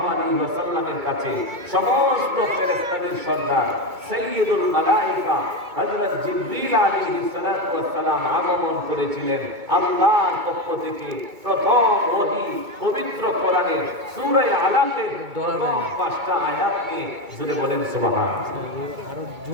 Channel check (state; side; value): late; left; 2.2 ms